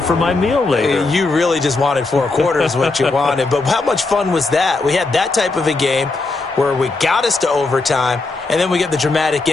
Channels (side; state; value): right; quieter; 3.6 dB